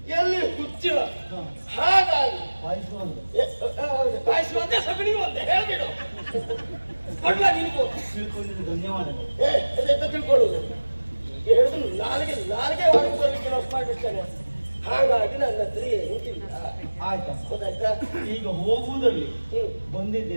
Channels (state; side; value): inverted; both; correlation -1.00